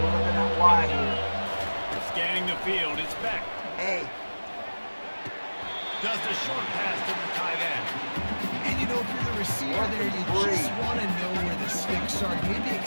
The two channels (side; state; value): both; inverted; correlation -1.00